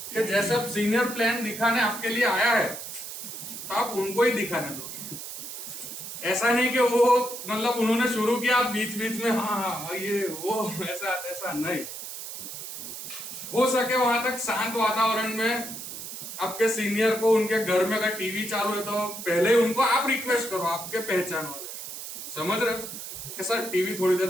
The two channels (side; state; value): right; noise; hiss, 9 dB below the sound